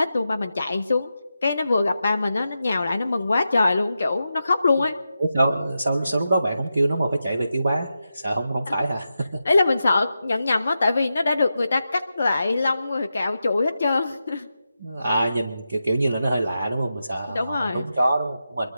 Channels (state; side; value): inverted; both; correlation -0.89